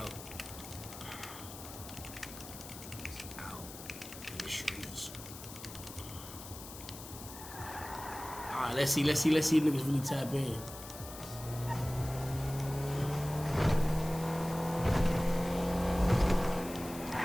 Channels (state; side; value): noise; left; hiss, 13 dB below the sound